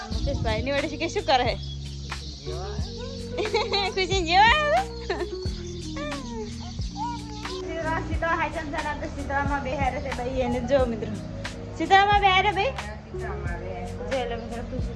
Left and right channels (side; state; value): both; identical; correlation 1.00